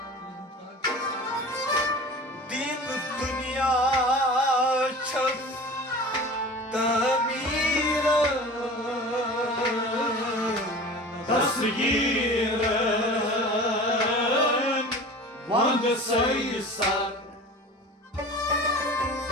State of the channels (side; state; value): both; normal; correlation 0.38